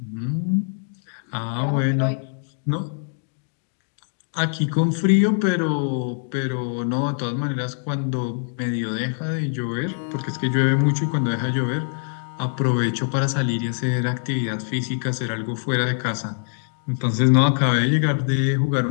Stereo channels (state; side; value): silent; right; digital silence